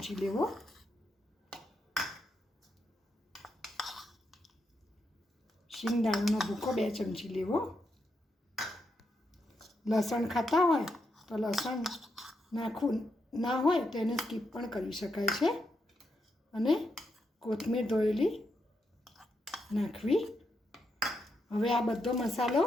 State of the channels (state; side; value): normal; both; correlation 0.82